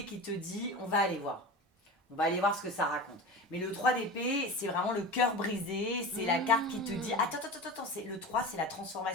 qui te dit on va aller voir. On va aller voir ce que ça raconte. Mais le 3 d'épée, c'est vraiment le cœur brisé. C'est la carte qui te dit attends, le 3, c'est la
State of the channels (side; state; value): both; normal; correlation 0.30